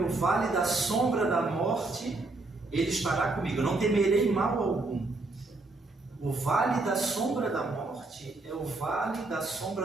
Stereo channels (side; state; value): left; quieter; 3.2 dB